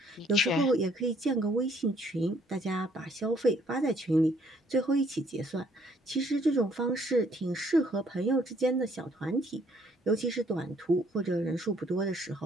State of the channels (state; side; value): normal; both; correlation 0.65